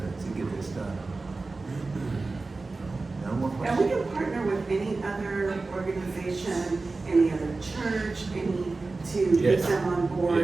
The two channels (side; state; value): left; quieter; 3.6 dB